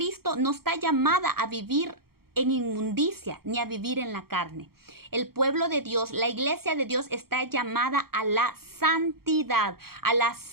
no está llamada a vivir en inmundicia ni a vivir en la carne. El pueblo de Dios, la iglesia de Dios, está llamada a la santidad, a la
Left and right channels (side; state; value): left; late; 0.94 ms